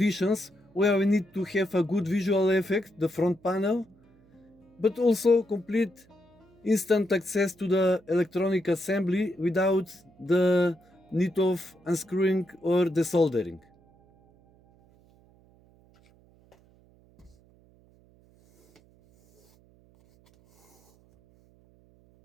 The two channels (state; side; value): noise; right; hum, 30 dB below the sound